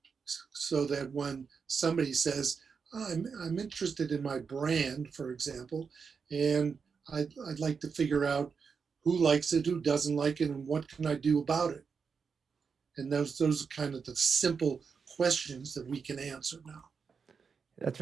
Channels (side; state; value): left; quieter; 5.7 dB